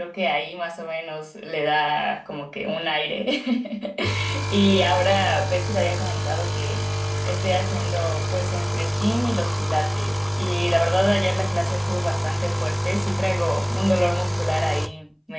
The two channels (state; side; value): identical; both; correlation 1.00